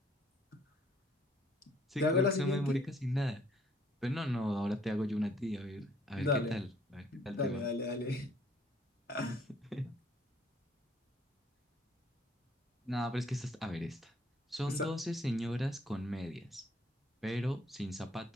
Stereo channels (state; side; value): normal; both; correlation 0.62